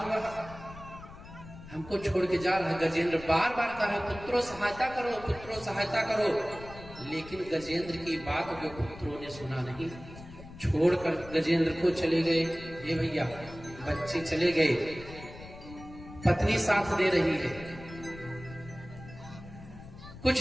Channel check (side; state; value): left; noise; rumble, 16 dB below the sound